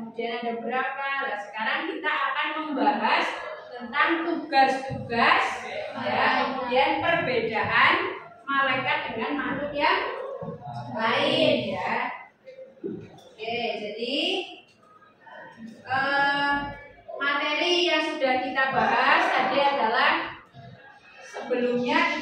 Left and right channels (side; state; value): both; identical; correlation 1.00